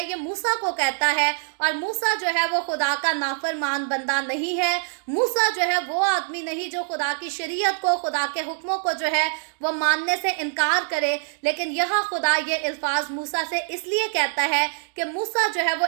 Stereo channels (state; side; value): silent; left; digital silence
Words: ये मूसा को कहता है, और मूसा जो है वो खुदा का नाफरमान बंदा नहीं है। मूसा जो है वो आदमी नहीं जो खुदा की शरीयत को, खुदा के हुक्मों को जो है वो मानने से इनकार करे। लेकिन यहाँ खुदा ये अल्फाज मूसा से इसलिए कहता है कि मूसा जो है वो